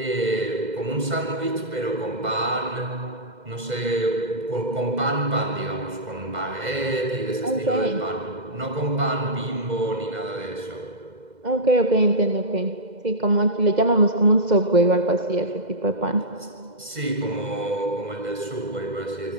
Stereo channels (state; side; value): late; left; 2.0 ms